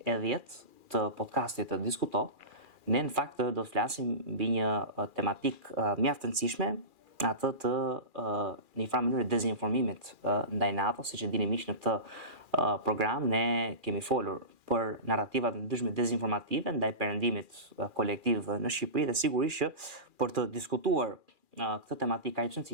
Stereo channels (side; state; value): left; late; 2.4 ms